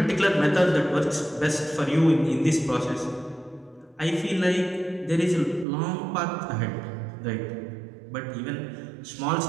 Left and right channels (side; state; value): left; drops out; at 5.7 s